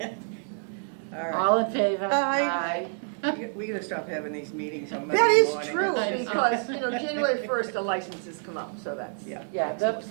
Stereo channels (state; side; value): silent; left; 60 dB below the other